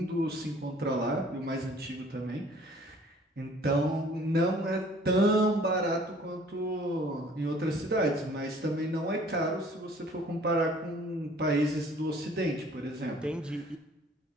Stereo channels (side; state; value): both; normal; correlation 0.54